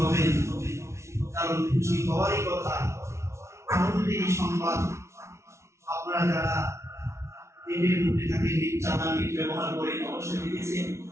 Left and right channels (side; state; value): left; late; 0.13 ms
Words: হবেন, কারণ খুশি হওয়ারই কথা। আনন্দের সংবাদ, আপনারা যারা নেটের মধ্যে থাকেন, নেট ব্যবহার করেন, অবশ্যই দেখেছেন